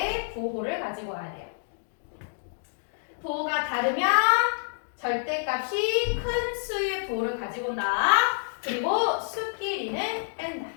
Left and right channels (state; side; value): silent; right; digital silence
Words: 부호를 가지고 와야 돼요. 부호가 다르면 절대값이 큰 수의 부호를 가지고 온다. 그리고 수끼리는 뺀다.